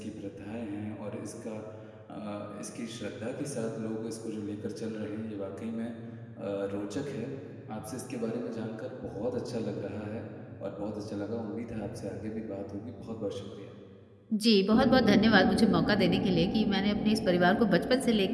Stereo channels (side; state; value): both; identical; correlation 1.00